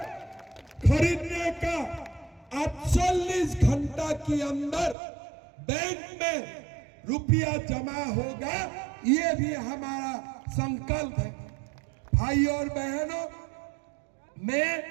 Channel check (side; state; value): left; drops out; at 5.0 s